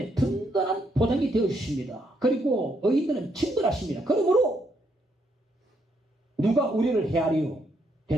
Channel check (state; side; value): normal; both; correlation 0.75